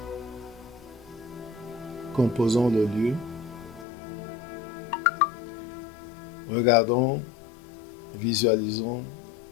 composons le lieu. Regardons, visualisons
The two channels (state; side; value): drops out; right; at 3.9 s